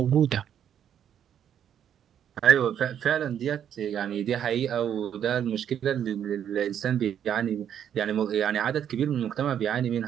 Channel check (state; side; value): quieter; left; 9.4 dB